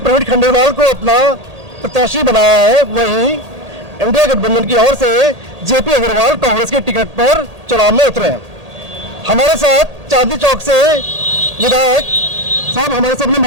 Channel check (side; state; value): left; late; 1.8 ms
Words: खंडेलवाल को अपना प्रत्याशी बनाया है, वहीं इंडिया गठबंधन की ओर से जेपी अग्रवाल कांग्रेस के टिकट पर चुनाव में उतरे हैं। हमारे साथ चांदनी चौक से विधायक साहब हमारे सामने